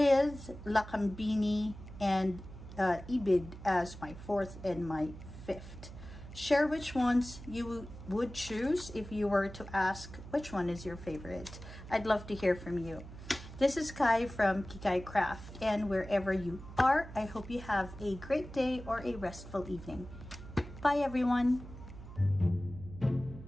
Lakambini and Ibid as my fourth and my fifth. Share which ones you would choose if you were to ask which one is your favorite. I'd love to hear from you. This is Kai from Kikay Craft, and wherever you are, I hope you have a great day or a restful evening. Bye everyone.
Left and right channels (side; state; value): right; noise; hum, 14 dB below the sound